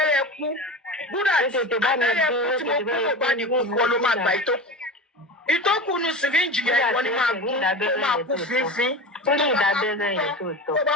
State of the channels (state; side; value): normal; both; correlation 0.28